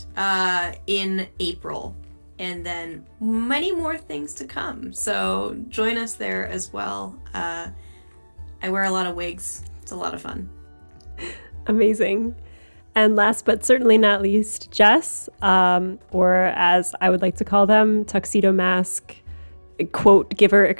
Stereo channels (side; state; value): both; inverted; correlation -1.00